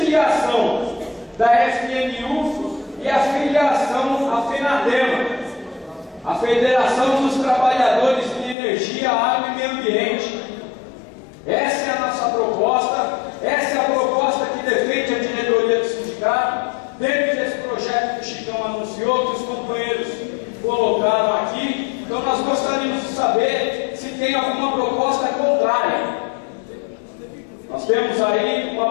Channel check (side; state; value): right; drops out; at 8.6 s